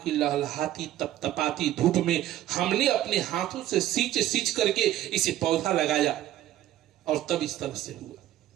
की लहलहाती तपतपाती धूप में हमने अपने हाथों से सींच सींच करके इसे पौधा लगाया और तब इस तरह से हुआ।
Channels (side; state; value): left; quieter; 13.2 dB